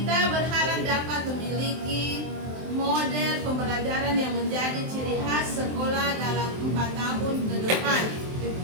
berharap dapat memiliki model pembelajaran yang menjadi ciri khas sekolah dalam 4 tahun ke depan.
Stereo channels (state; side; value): late; left; 23 ms